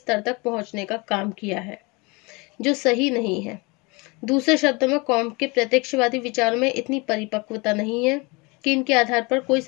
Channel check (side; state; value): right; quieter; 27.1 dB